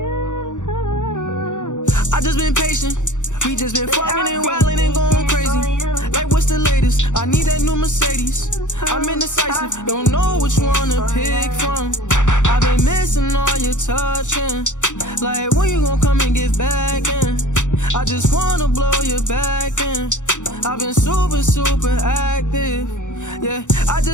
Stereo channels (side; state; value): right; late; 0.85 ms